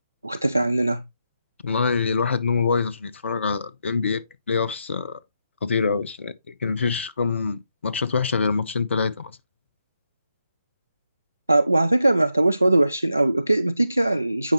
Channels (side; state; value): both; inverted; correlation -0.84